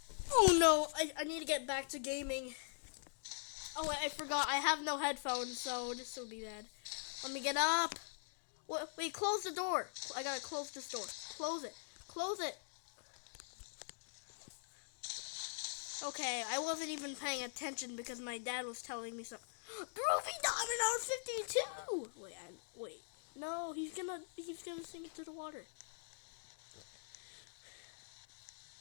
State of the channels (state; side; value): silent; right; digital silence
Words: Oh no, I need to get back to gaming. Oh wait, I forgot. I have no headphones, so this will be bad. Let me get up. Wait, close the door. I gotta close this door. Close it. Close it. Okay, I wasn't even paying attention because my dad was telling me something. Groovy Diamond on 52! Wait. No, he's gonna sink it to the water.